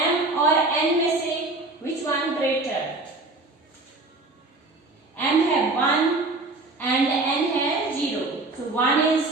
m और n में से which one greater, m है 1 and n है 0, so 1 is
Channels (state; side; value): quieter; left; 3.1 dB